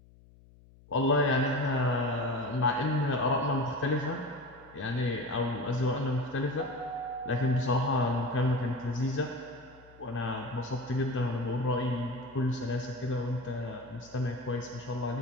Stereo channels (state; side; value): noise; left; hum, 25 dB below the sound